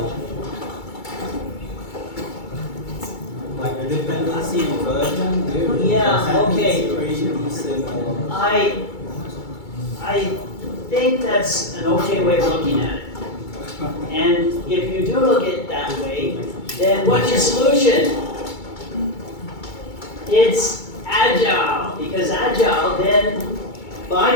Like the dependency inversion, Yeah, okay. pretty similar. I think that's an okay way of looking at it. And if you do look at it that way, then what's your solution? It's Agile, because Agile then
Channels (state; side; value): late; right; 2.3 ms